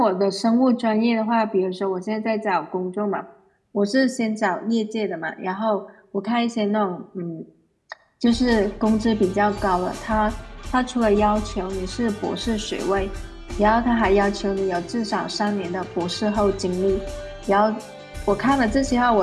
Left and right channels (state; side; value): identical; both; correlation 1.00